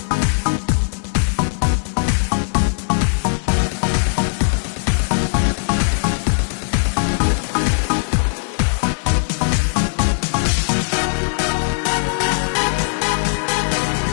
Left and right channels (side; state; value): right; silent; digital silence